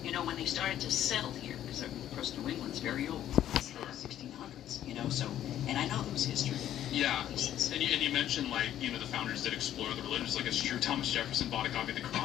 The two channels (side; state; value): right; quieter; 11.6 dB